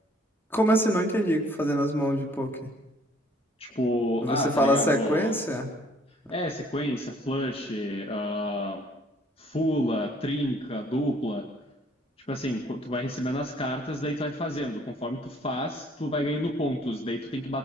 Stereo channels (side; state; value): both; normal; correlation 0.60